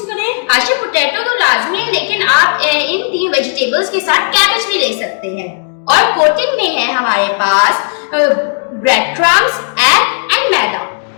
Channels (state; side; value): silent; right; digital silence